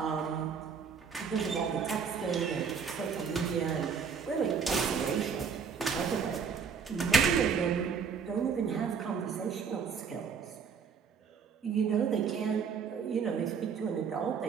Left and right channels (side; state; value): left; quieter; 6.3 dB